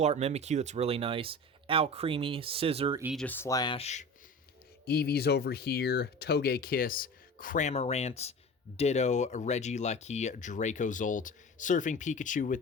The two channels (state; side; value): normal; both; correlation 0.35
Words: art Mimikyu. That's really nice. Alcremie, Scissor, Aegis Slash. Eevee's over here. Togekiss, Cramorant, Ditto, Regieleki, Dracozolt, Surfing Pikachu with